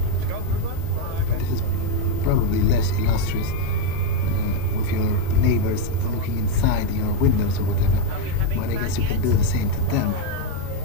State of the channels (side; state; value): both; different; correlation 0.02